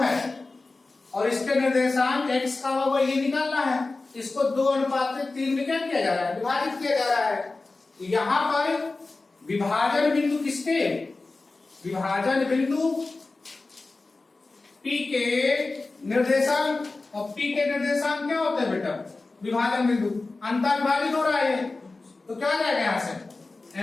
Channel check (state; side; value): quieter; right; 3.5 dB